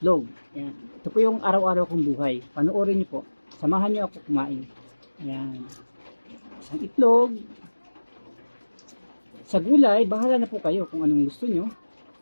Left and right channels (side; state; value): both; inverted; correlation -1.00